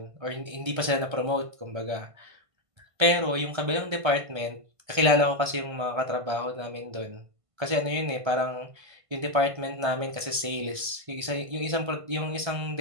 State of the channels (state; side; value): late; left; 1.5 ms